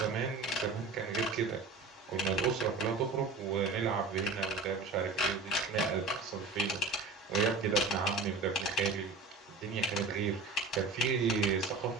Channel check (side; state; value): left; quieter; 3.8 dB